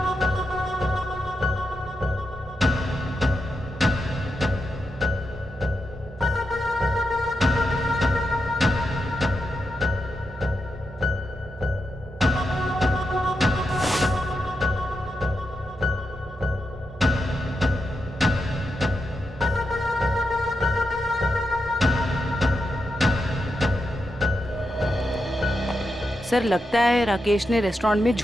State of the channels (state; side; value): normal; both; correlation 0.86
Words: सर लगता है राकेश ने रेस्टोरेंट में